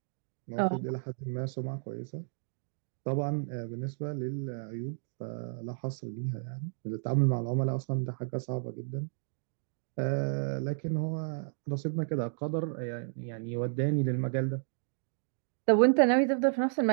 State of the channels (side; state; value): left; silent; digital silence